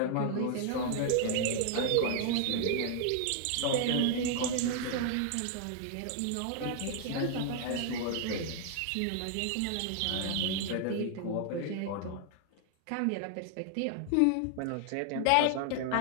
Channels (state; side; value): different; both; correlation 0.00